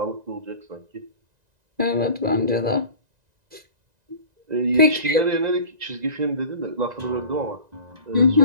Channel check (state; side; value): late; left; 1.9 ms